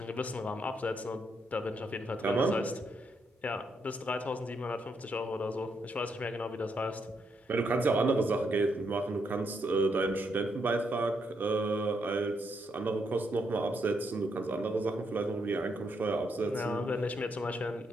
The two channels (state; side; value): normal; both; correlation 0.78